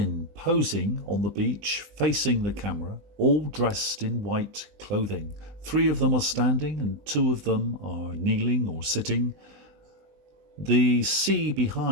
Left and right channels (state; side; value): late; left; 20 ms